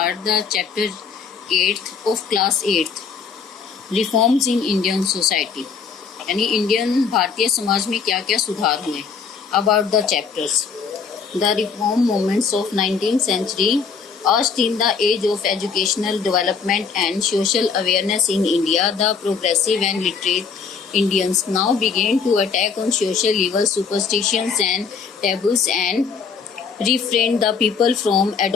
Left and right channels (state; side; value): quieter; right; 5.7 dB